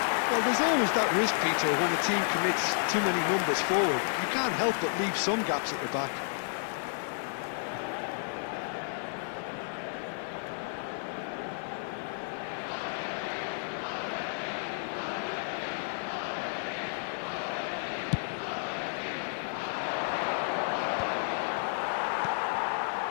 Well, there's always that risk, Peter, when a team commits too many numbers forward. You can't help but leave some gaps at the back.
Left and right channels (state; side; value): silent; right; digital silence